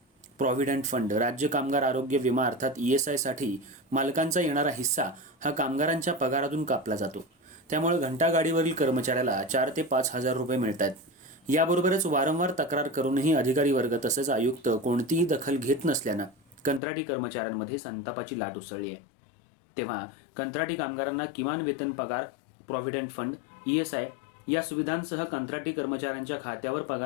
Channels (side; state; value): right; drops out; at 16.8 s